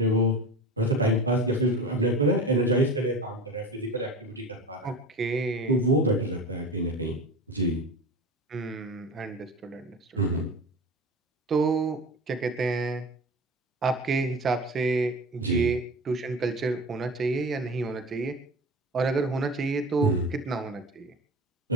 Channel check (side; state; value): both; normal; correlation 0.32